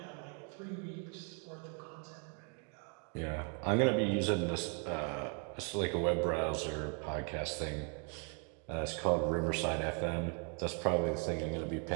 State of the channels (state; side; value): quieter; left; 39.8 dB